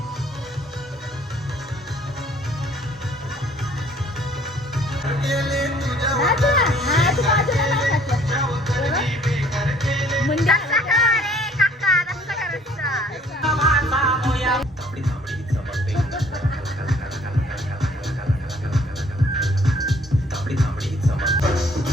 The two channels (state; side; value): normal; both; correlation 0.58